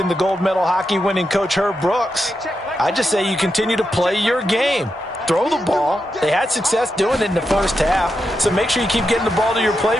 the gold medal hockey winning coach Herb Brooks, I just say you continue to play your game. Throw the ball. They had success doing it in the first half, so make sure you keep getting the ball to your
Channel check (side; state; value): both; normal; correlation 0.86